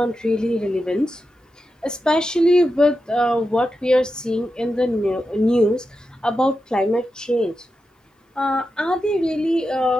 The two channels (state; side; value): normal; both; correlation 0.89